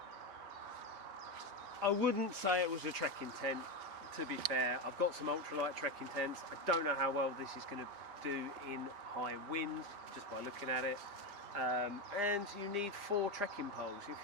I wouldn't say it was a trekking tent, to be fair. I've got some ultralight trekking tents. I don't know how well this is going to do in high wind, just by looking at it. And you need 4 trekking poles. If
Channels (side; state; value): left; late; 5.0 ms